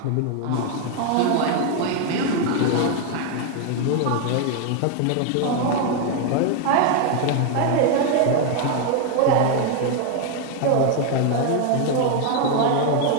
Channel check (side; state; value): both; different; correlation 0.01